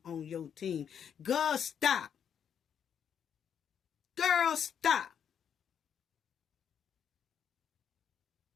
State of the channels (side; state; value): right; quieter; 8.2 dB